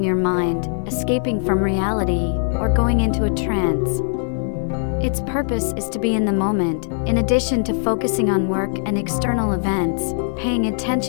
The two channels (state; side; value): silent; right; 56 dB below the other